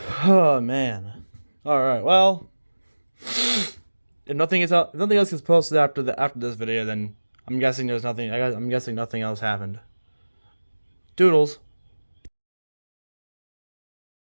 Oh man. All right. Well, if nothing else gets posted after this video, then I'm guessing there's nothing. I'm guessing nothing else happened. Doodles.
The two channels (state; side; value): inverted; both; correlation -1.00